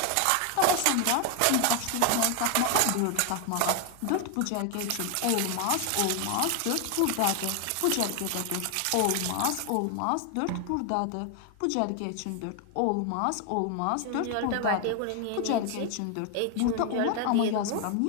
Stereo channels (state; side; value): different; both; correlation 0.00